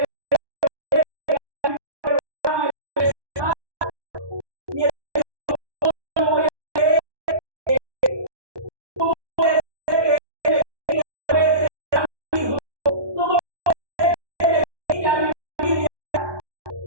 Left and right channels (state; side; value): late; left; 1.2 ms